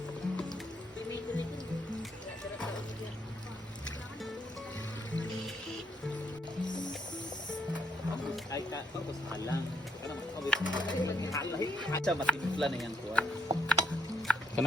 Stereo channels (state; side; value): normal; both; correlation 0.72